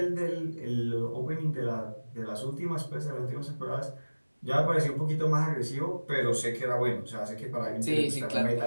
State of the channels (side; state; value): both; inverted; correlation -1.00